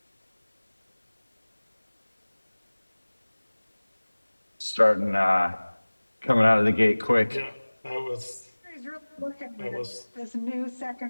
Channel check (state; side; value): inverted; both; correlation -1.00